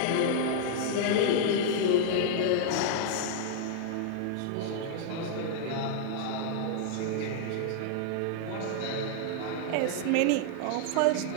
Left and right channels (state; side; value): different; both; correlation -0.01